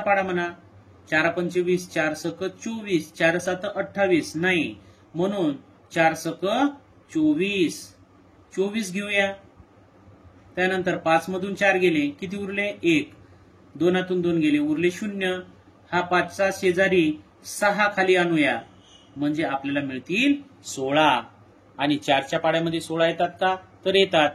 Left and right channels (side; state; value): both; identical; correlation 1.00